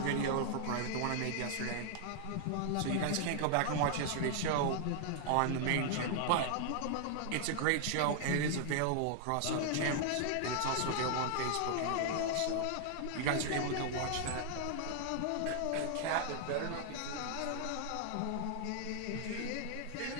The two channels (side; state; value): both; different; correlation 0.00